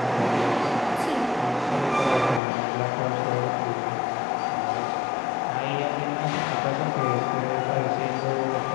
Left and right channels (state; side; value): drops out; right; at 2.4 s